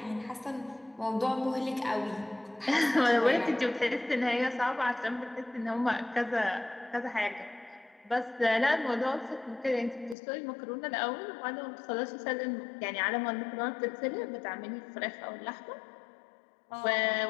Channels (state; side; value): drops out; right; at 10.2 s